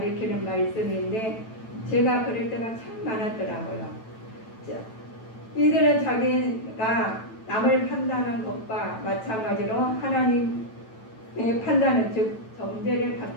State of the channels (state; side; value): late; right; 9.1 ms